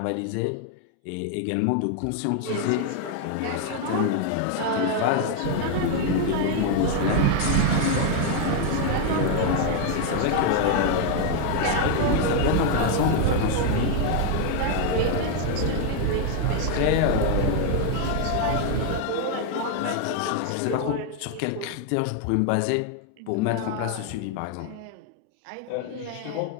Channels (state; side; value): different; both; correlation 0.00